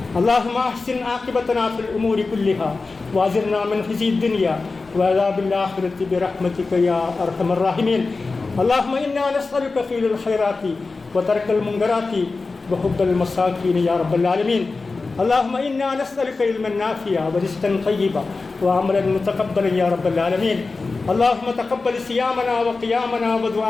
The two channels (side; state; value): right; quieter; 3.9 dB